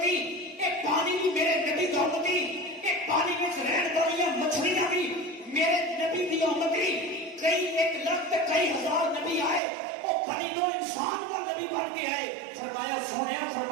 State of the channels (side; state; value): left; drops out; at 9.6 s